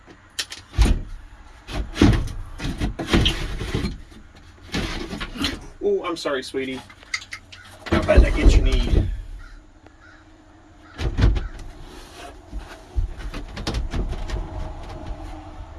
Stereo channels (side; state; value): both; identical; correlation 1.00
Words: Oh, I'm sorry, sweetie. How about that get you need? I